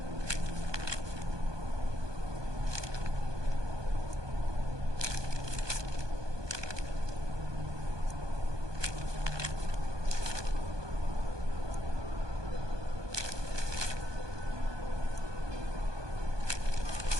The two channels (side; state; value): left; late; 1.2 ms